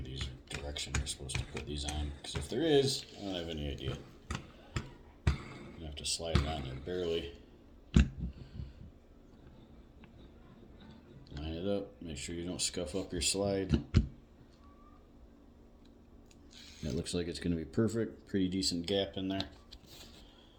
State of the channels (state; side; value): identical; both; correlation 1.00